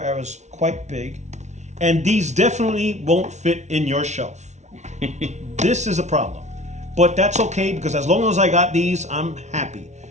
era, is quite big, and these definitely won't fit in your shelf. This is a problem, but that's okay because as long as I got these, I'm happy.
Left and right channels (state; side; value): late; left; 0.33 ms